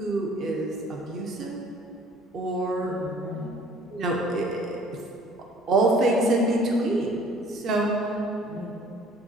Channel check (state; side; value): normal; both; correlation 0.53